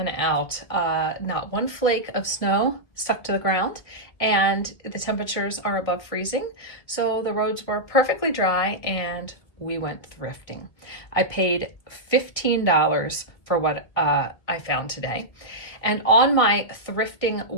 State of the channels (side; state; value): right; late; 2.0 ms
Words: out. Not one flake of snow stuck to the ground, and the temperatures are above freezing, so the roads were perfectly dry and we went thrifting. I paid $15 for what I found today. And on my thrifting